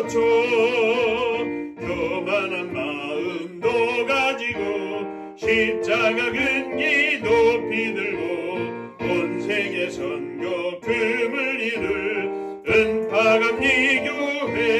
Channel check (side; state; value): both; identical; correlation 1.00